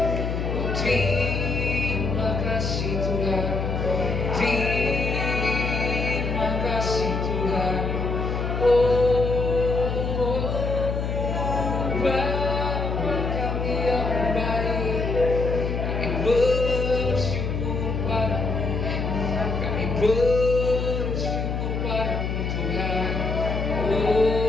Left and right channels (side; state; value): left; noise; hum, 2 dB below the sound